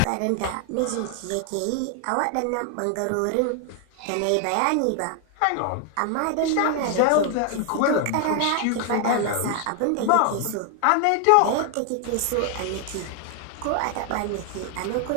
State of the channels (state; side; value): different; both; correlation 0.00